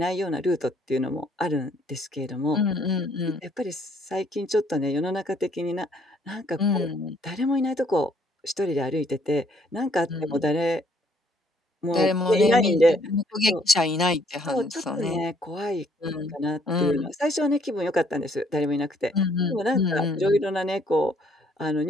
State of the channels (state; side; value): normal; both; correlation 0.66